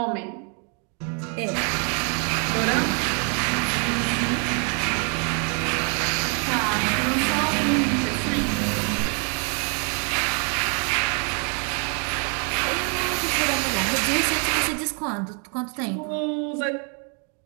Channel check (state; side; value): quieter; left; 39.2 dB